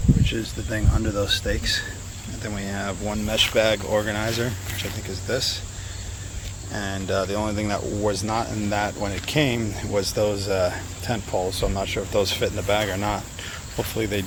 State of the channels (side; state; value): both; identical; correlation 1.00